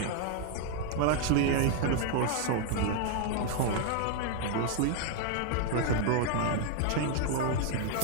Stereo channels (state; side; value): different; both; correlation 0.00